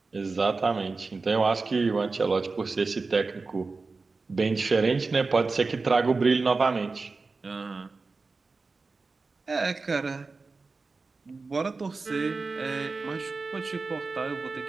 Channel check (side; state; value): left; quieter; 4.0 dB